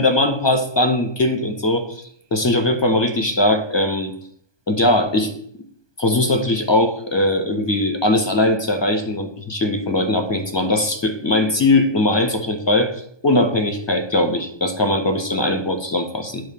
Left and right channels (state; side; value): late; right; 1.2 ms